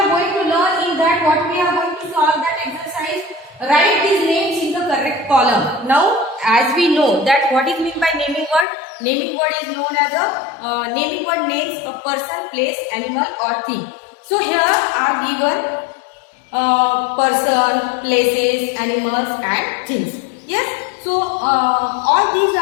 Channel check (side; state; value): right; drops out; at 8.7 s